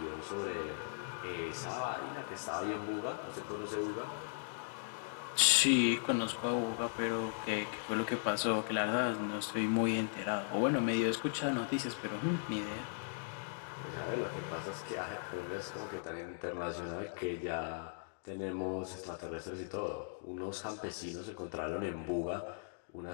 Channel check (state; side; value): silent; right; digital silence